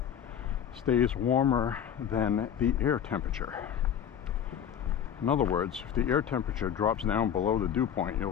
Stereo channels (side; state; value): right; quieter; 8.9 dB